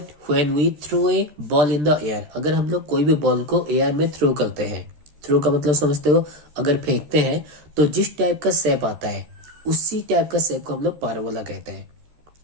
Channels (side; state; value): left; late; 13 ms